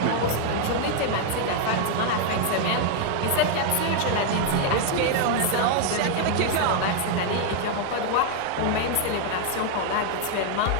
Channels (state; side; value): different; both; correlation 0.00